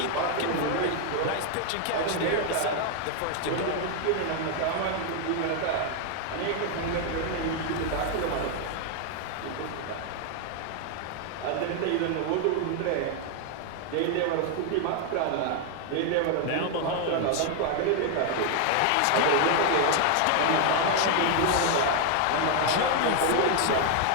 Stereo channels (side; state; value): both; different; correlation 0.00